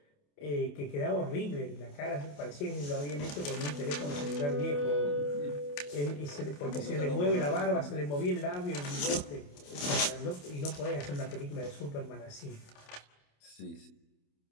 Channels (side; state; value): right; late; 28 ms